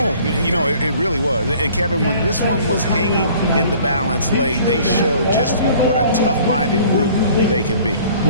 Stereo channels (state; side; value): inverted; both; correlation -0.52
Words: You know, it really was. And Kevin, when this one was hanging in the balance late, they showed just what a tough-minded group they can be.